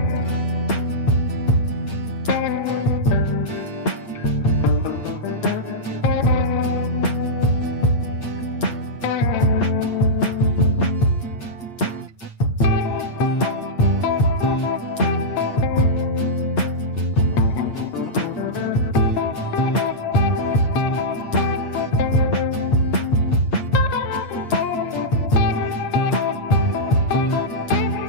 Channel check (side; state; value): right; late; 8.6 ms